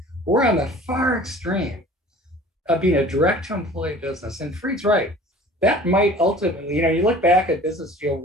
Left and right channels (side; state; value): both; normal; correlation 0.46